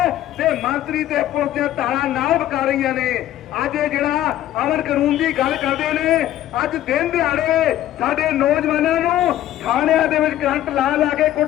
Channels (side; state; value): right; quieter; 12.9 dB